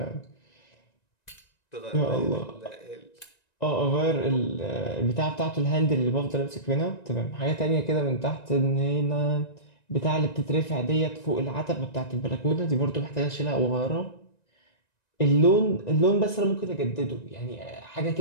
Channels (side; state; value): right; late; 1.9 ms